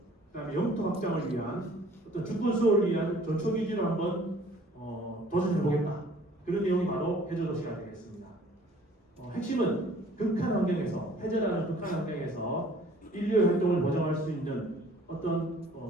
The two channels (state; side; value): normal; both; correlation 0.54